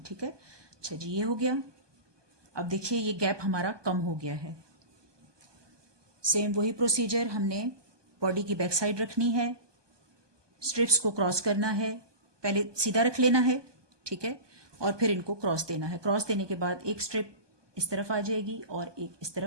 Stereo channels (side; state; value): left; late; 1.2 ms